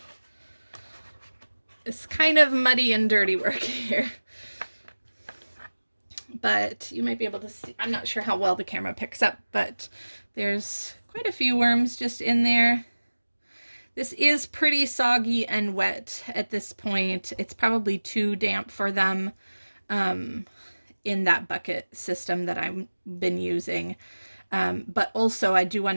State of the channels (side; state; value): both; inverted; correlation -1.00